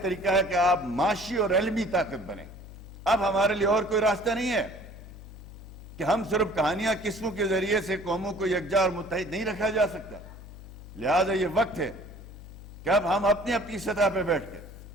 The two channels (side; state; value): left; noise; hum, 16 dB below the sound